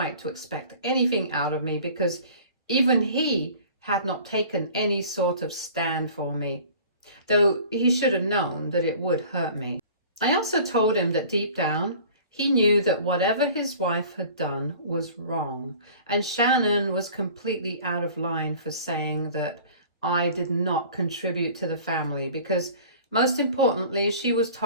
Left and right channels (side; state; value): both; inverted; correlation -0.46